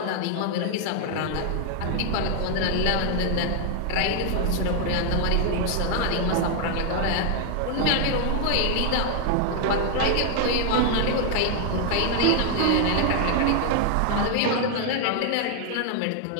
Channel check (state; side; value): different; both; correlation 0.00